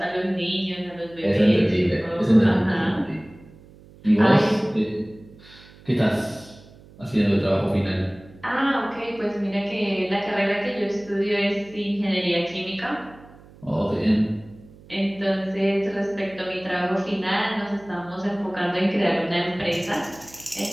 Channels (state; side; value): noise; right; hum, 23 dB below the sound